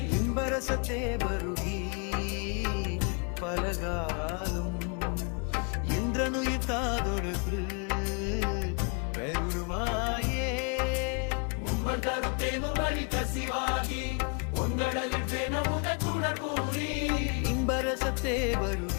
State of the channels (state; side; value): quieter; right; 37.0 dB